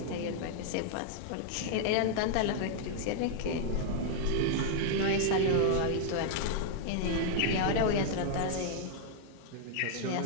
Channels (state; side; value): different; both; correlation -0.01